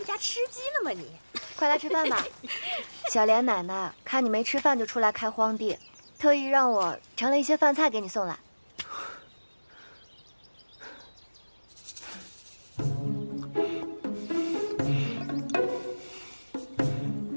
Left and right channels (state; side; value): inverted; both; correlation -1.00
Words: 家吃鸡了吗？你快来吃饭吧。小莲奶奶看你没吃饭就出来开荒地，特意让我盛了一些饭菜给你送来。